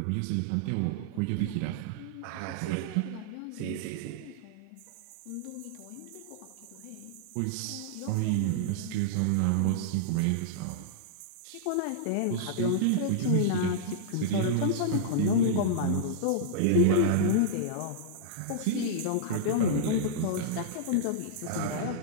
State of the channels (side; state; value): both; different; correlation -0.02